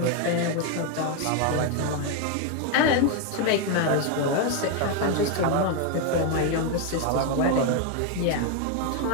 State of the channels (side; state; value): both; different; correlation 0.01